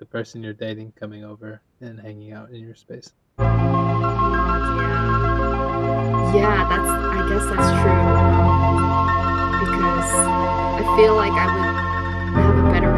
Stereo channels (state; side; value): identical; both; correlation 1.00